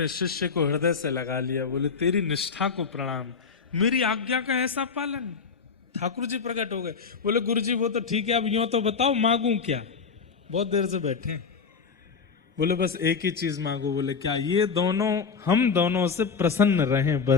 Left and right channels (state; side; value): quieter; right; 5.5 dB